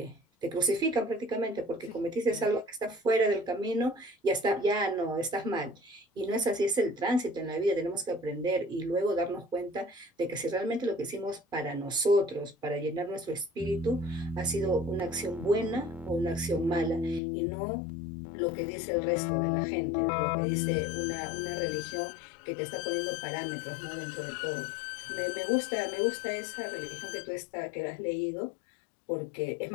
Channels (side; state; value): right; drops out; at 17.2 s